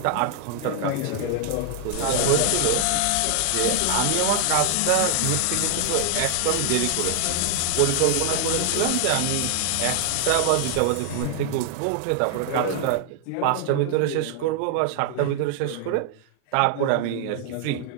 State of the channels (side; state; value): both; different; correlation 0.00